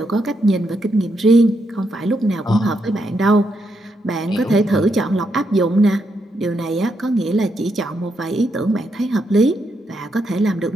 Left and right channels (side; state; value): both; normal; correlation 0.80